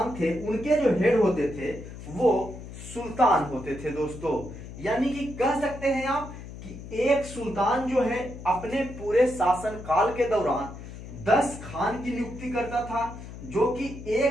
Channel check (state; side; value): noise; left; hum, 13 dB below the sound